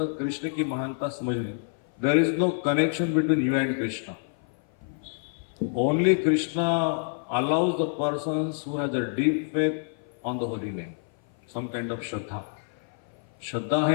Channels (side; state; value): right; silent; 56 dB below the other